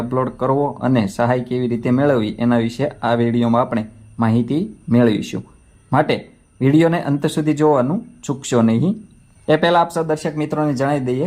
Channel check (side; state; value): both; identical; correlation 1.00